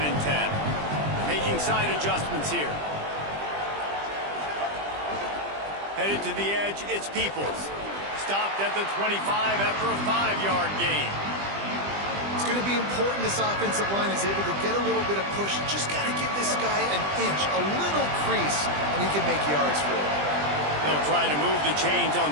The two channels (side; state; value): left; late; 20 ms